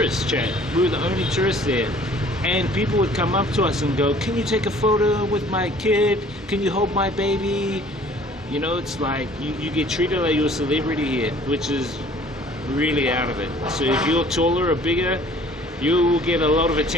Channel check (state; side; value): normal; both; correlation 0.53